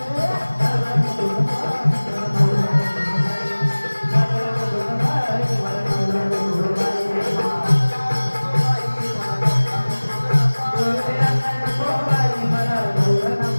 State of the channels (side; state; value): both; inverted; correlation -1.00